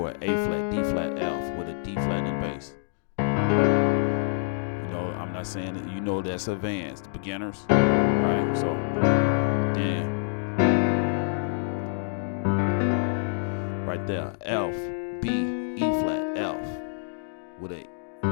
A flat, D flat, F with a D flat in bass. You know, I'm not saying that, you know, that's advanced, the beginners. All right. So then. Right there, F, B, E flat, F, with a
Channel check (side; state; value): right; silent; digital silence